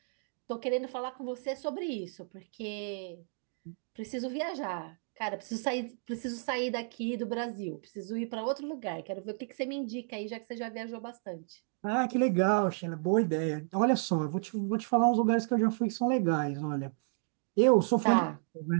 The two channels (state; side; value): silent; left; 56 dB below the other